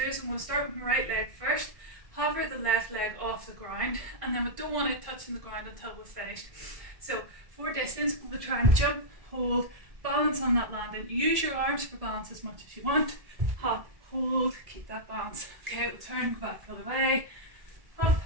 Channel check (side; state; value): left; late; 1.7 ms